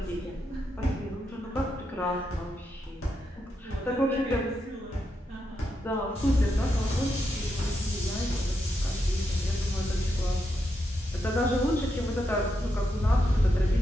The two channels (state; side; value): normal; both; correlation 0.83